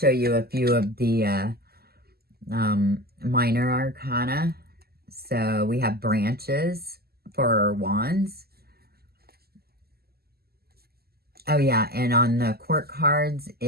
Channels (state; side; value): late; left; 0.46 ms